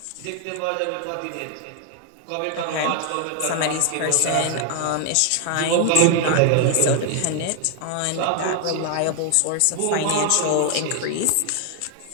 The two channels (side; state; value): both; different; correlation 0.00